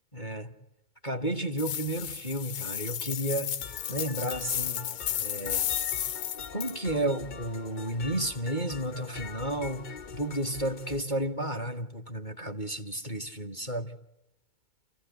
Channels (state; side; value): late; right; 2.2 ms